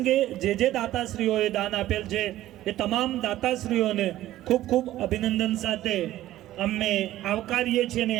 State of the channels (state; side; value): quieter; left; 14.4 dB